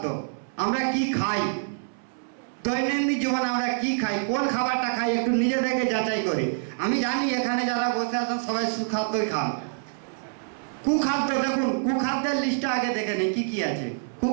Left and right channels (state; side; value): silent; left; 61 dB below the other